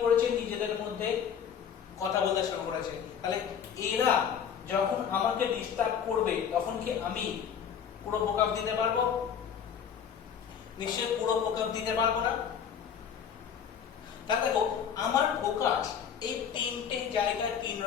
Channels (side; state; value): right; quieter; 8.0 dB